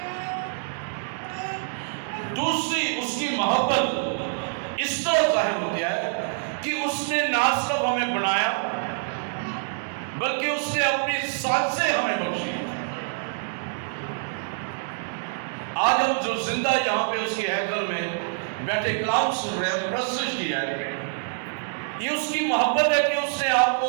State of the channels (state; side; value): silent; left; digital silence